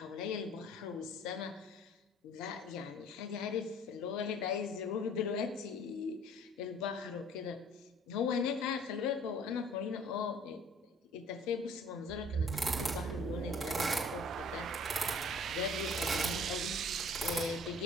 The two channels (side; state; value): both; normal; correlation 0.52